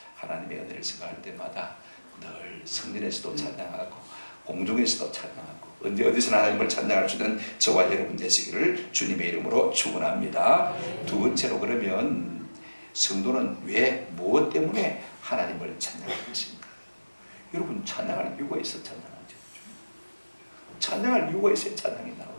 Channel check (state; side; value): inverted; both; correlation -1.00